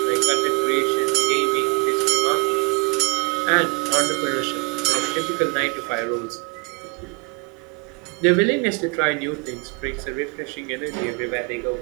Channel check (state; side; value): quieter; left; 30.0 dB